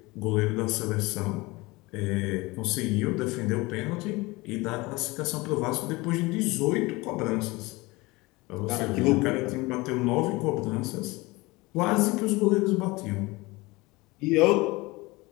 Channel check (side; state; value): right; quieter; 22.7 dB